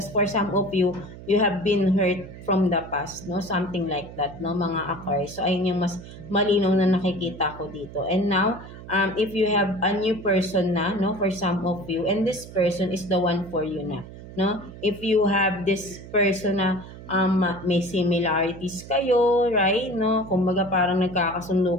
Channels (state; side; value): noise; right; hum, 15 dB below the sound